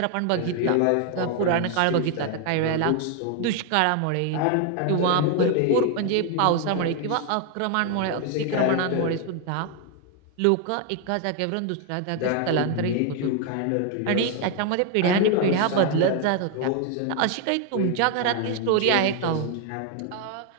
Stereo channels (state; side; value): different; both; correlation 0.00